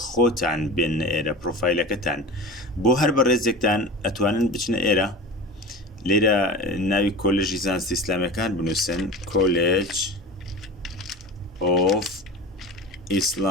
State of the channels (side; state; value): both; normal; correlation 0.32